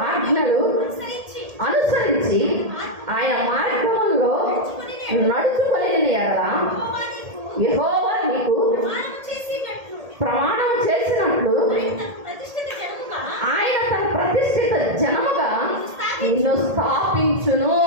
ఆజ్ఞలు అనుసరించి ఆయన మార్గంలో నడుచుకొని ఎడల యెహోవా నీకు ప్రమాణం చేసినట్లు ఆయన తన ప్రతిష్ఠిత జనముగా నిన్ను స్థాపించును.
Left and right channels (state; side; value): late; left; 1.8 ms